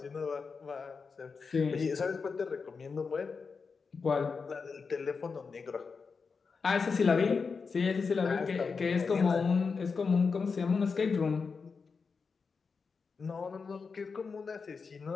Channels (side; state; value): right; quieter; 5.1 dB